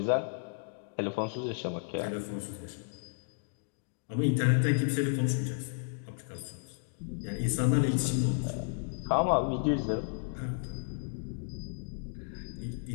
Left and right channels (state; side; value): silent; right; digital silence